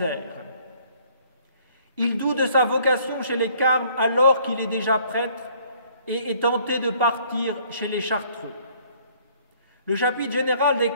Il doute de sa vocation chez les Carmes alors qu'il est déjà prêtre et est tenté de partir chez les Chartreux. Le chapitre général des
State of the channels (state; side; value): inverted; both; correlation -0.60